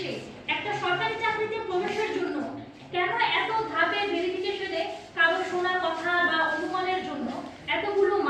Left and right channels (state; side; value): identical; both; correlation 1.00